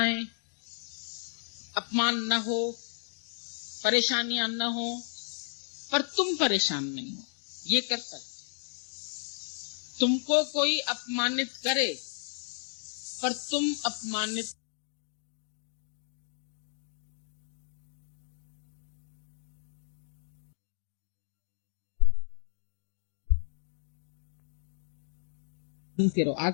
अपमान न हो, परेशानियां न हो, पर तुम परेशान नहीं हो। ये करता है। तुमको कोई अपमानित करे पर तुम अपमानित रहो।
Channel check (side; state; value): right; silent; digital silence